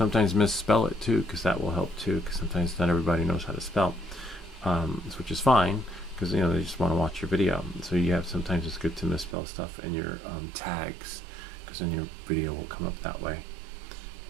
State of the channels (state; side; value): drops out; left; at 9.3 s